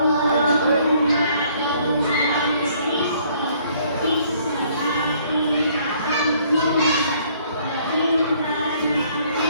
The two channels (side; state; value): both; inverted; correlation -0.62